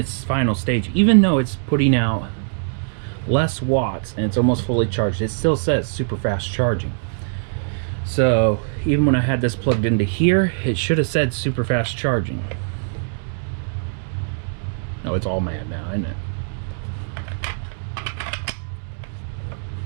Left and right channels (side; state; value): left; silent; digital silence